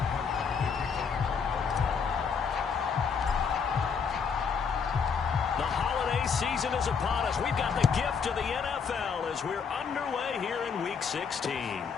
The holiday season is upon us. We've got the gift of the NFL as we're underway here in Week 16.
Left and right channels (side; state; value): right; quieter; 6.1 dB